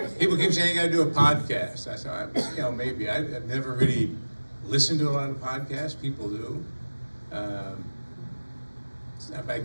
People keep saying I gotta do a podcast. I said, maybe. I've never really listened to a lot of podcasts. People do. I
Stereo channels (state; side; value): inverted; both; correlation -1.00